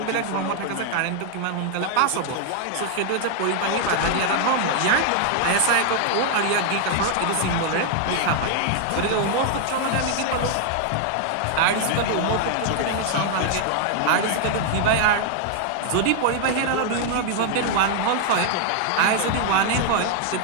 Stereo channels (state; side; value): different; both; correlation 0.00